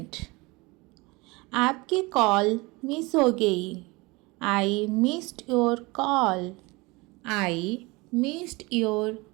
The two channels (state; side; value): quieter; left; 24.4 dB